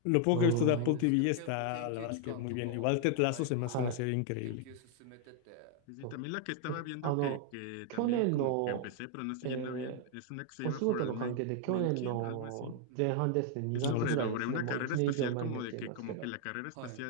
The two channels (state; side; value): different; both; correlation 0.00